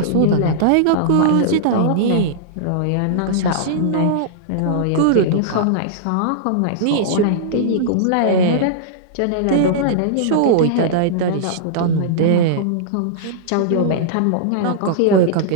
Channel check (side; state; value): both; different; correlation -0.02